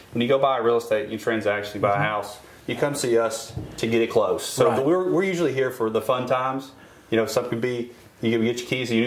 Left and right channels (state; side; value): identical; both; correlation 1.00